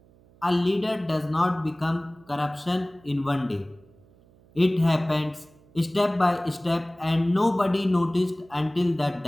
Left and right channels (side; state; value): right; noise; hum, 29 dB below the sound